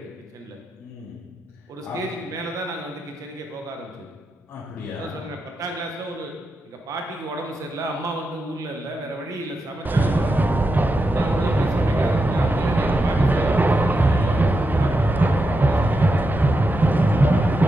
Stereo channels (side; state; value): both; normal; correlation 0.87